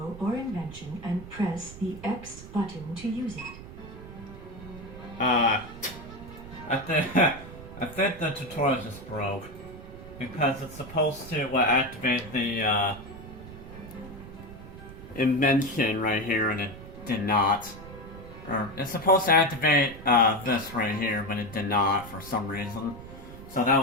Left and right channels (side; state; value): right; noise; rumble, 15 dB below the sound